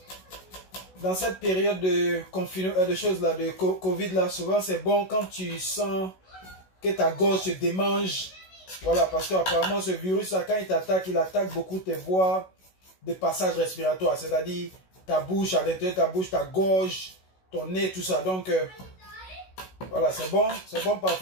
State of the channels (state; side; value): late; right; 16 ms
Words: confinement, de choses là, de Covid là, souvent c'est bon quand tu sens que ta gorge se démange. Voilà, parce qu'apparemment ce virus là, quand il attaque beaucoup tes voies de passage respiratoire, c'est-à-dire ta bouche, à l'intérieur de ta bouche, ta gorge, ton nez, tout ça. Donc voilà, c'est bon